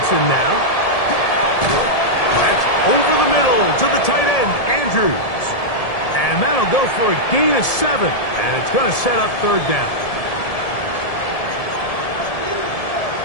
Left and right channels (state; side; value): late; right; 1.7 ms